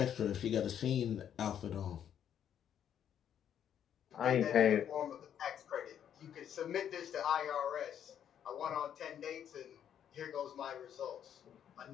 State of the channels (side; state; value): right; quieter; 9.4 dB